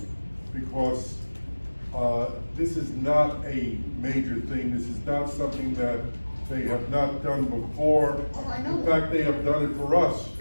Because, this is not a major thing, this is not something that they have not done before. Oh, I know In that. fact, they have done it for us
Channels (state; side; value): inverted; both; correlation -1.00